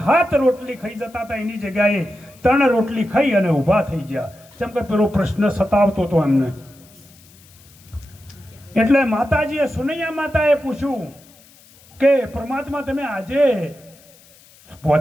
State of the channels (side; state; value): left; noise; hiss, 26 dB below the sound